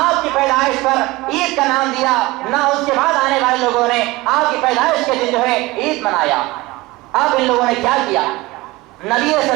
کی پیدائش پر عید کا نام دیا، نہ اس کے بعد آنے والے لوگوں نے آپ کی پیدائش کے دن جو ہے عید منایا۔ اب ان لوگوں نے کیا کیا؟ نبی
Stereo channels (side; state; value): left; quieter; 20.8 dB